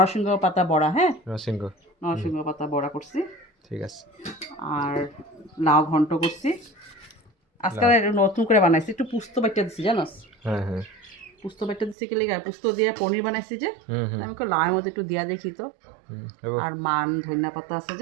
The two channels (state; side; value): drops out; left; at 12.0 s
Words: পাতা বড়া, হ্যাঁ নরসিংহ। হুম নরসিংহ পাতা বড়া করছি। ঠিক আছে। আর লাউ ঘন্ট করছি। আজকাল লাও। এটা নতুন করে বানাইছি, একটু পুস্ত বাটা দিছি জানোস। হ্যাঁ হ্যাঁ। পুস্ত বাটা দিছি কি লেগে, পুস্ত দিয়ে পনির বানাইছি যে। হুম হুম আমি লাউয়ের মধ্যে একটু দিয়া দেখি তো। হুম হবো। আর মান ধনিয়া পাতা আছে